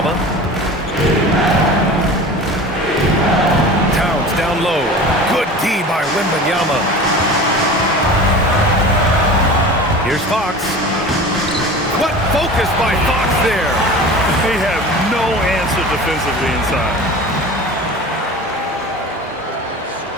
Towns down low. Good D by Wembanyama. Here's Fox. What focus by Fox there. They have no answer defensively inside.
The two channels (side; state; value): both; normal; correlation 0.36